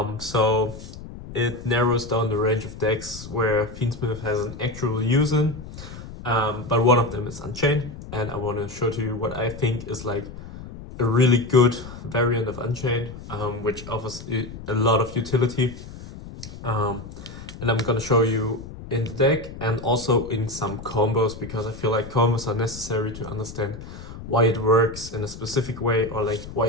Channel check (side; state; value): left; noise; rumble, 13 dB below the sound